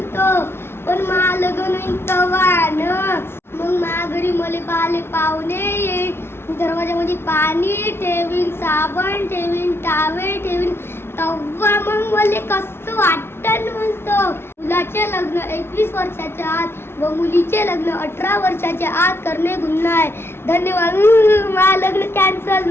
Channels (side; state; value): right; late; 0.12 ms